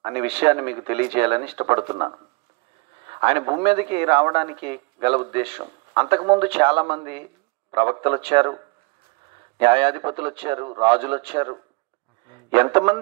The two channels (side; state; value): left; quieter; 28.1 dB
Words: అనే విషయాన్ని మీకు తెలియజేయాలని ఇష్టపడుతున్నాను. ఆయన భూమి మీదకి రావడానికి గల ఉద్దేశం, అంతకుముందు చాలామంది ప్రవక్తలు వచ్చారు, న్యాయాధిపతులు వచ్చారు, రాజులు వచ్చారు.